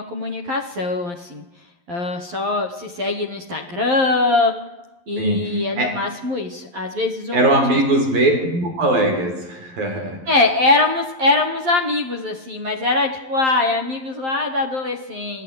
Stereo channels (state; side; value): late; left; 11 ms